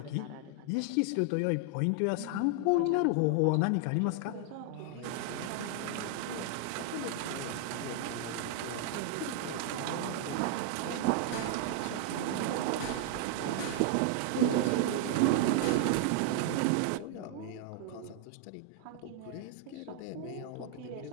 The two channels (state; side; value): different; both; correlation 0.00